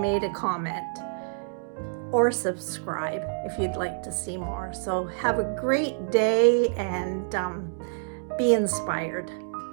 a comment or subscribe if you'd like to see more. So have a great day, and be inspired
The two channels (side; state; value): left; silent; digital silence